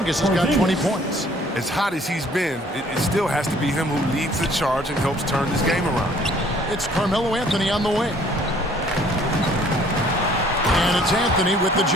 has got 20 points. As hot as he's been, it still has to be him who leads the charge and helps turn this game around. It's Carmelo Anthony on the wing. And it's Anthony with the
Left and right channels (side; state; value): both; normal; correlation 0.58